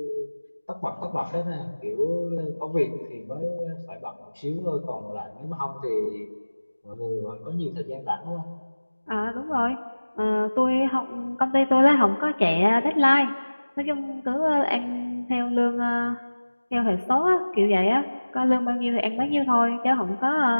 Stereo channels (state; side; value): inverted; both; correlation -1.00